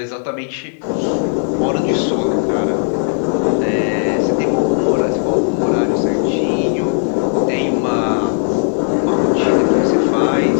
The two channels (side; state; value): right; silent; digital silence